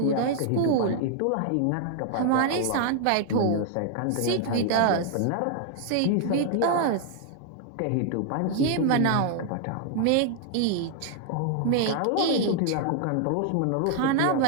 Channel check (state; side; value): different; both; correlation -0.01